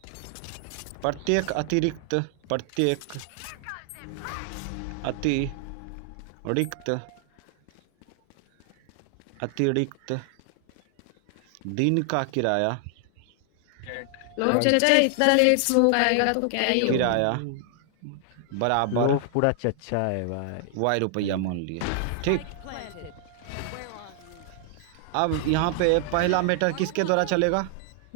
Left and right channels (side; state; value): both; different; correlation 0.00